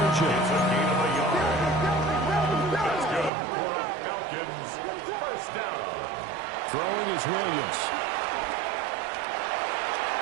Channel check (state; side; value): drops out; left; at 3.3 s